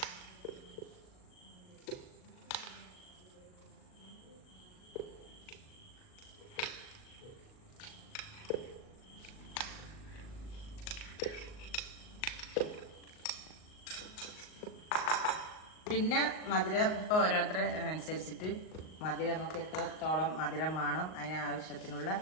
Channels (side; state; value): right; late; 38 ms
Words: പിന്നെ മധുരം ഇപ്പോൾ ഓരോരുത്തരെ അനുസരിച്ചിട്ട് മധുരം നമുക്ക് എത്രത്തോളം മധുരം വേണം അതിനാവശ്യത്തിനുള്ള